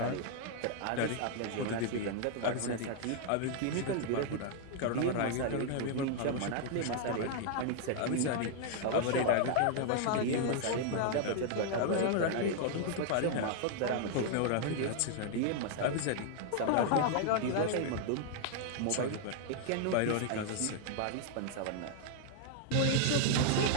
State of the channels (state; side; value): different; both; correlation 0.00